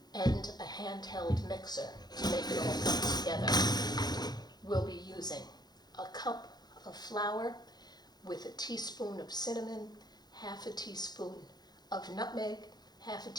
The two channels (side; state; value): right; late; 0.20 ms